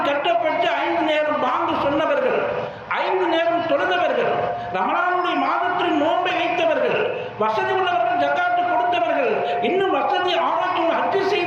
கட்டப்பட்டு 5 நேரம் பாங்கு சொன்னவர்கள், 5 நேரம் தொழுதவர்கள், ரமலானுடைய மாதத்தில் நோன்பை வைத்தவர்கள், வசதி உள்ளவர்கள் ஜக்காத்து கொடுத்தவர்கள், இன்னும் வசதி ஆரோக்கியம் ஹஜ்ஜு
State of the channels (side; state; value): both; identical; correlation 1.00